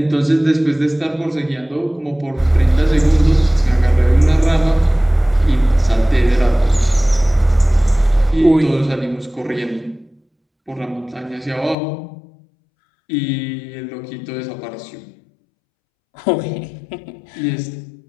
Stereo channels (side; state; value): right; drops out; at 11.8 s